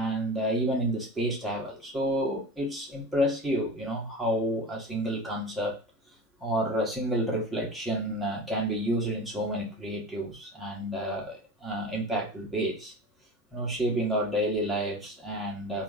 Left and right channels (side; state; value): both; normal; correlation 0.31